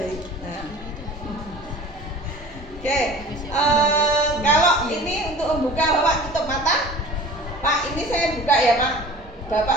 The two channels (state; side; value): normal; both; correlation 0.42